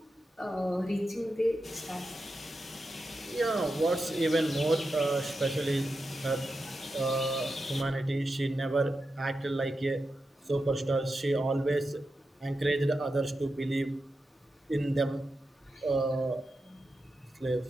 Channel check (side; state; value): both; normal; correlation 0.89